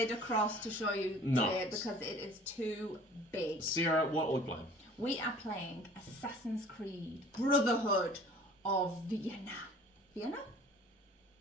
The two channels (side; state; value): both; normal; correlation 0.49